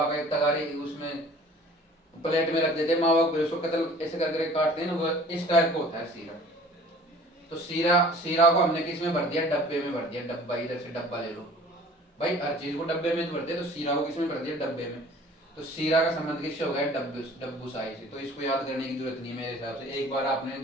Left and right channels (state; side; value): normal; both; correlation 0.48